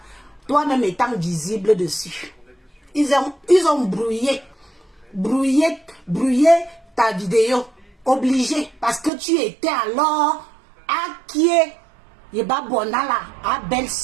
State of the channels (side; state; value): left; drops out; at 9.1 s